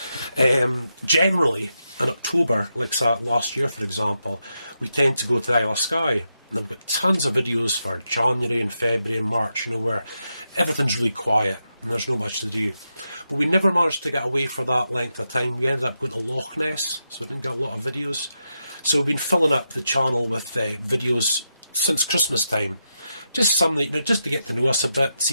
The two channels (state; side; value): inverted; both; correlation -0.86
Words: Generally, in October, like last year for example, we tend to go to the Isle of Skye, and I've got tons of videos for January and February and March, you know, where everything's really quiet. and there's not much to do. But we never managed to get away for that length of time. We ended up going to Loch Ness, so we didn't get a lot of videos. So we've been filling up the channel with videos since Christmas time. Just some that, just to get to know us a bit,